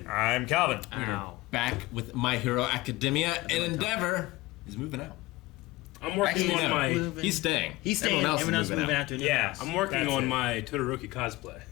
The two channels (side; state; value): right; quieter; 20.0 dB